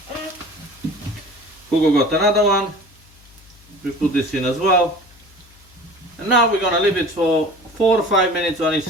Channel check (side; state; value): left; noise; hum, 27 dB below the sound